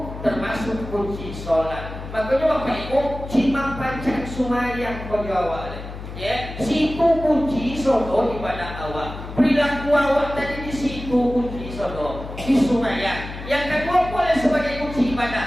termasuk kunci sholat makanya Bapak Ibu cimang pancang sumayang kau jawab ya, situ kunci sodo ibadah awak. Perilaku awak tadi di situ kunci sodo di sumayang. Yang kedua boleh sebagai kunci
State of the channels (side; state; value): left; noise; hum, 10 dB below the sound